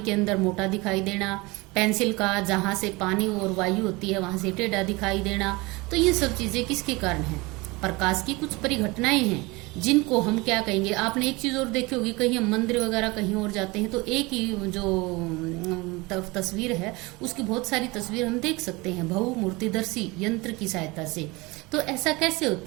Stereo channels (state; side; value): quieter; left; 23.9 dB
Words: के अंदर मोटा दिखाई देना, पेंसिल का जहां से पानी और वायु होती है वहां से टेढ़ा दिखाई देना। तो ये सब चीजें किसके कारण हैं? प्रकाश की कुछ परिघटनाएं हैं जिनको हम क्या कहेंगे। आपने एक चीज और देखी होगी, कहीं हम मंदिर वगैरह कहीं और जाते हैं तो एक ही जो तस्वीर है उसकी बहुत सारी तस्वीर हम देख सकते हैं बहुमूर्तिदर्शी यंत्र की सहायता से। तो ऐसा कैसे